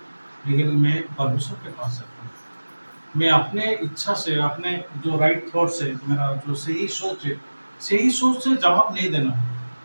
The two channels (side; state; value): both; inverted; correlation -1.00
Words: लेकिन मैं परमेश्वर के पास जाता हूँ, मैं अपने इच्छा से, अपने जो राइट थॉट से, मेरा जो सही सोच है, सही सोच से जवाब नहीं देना है।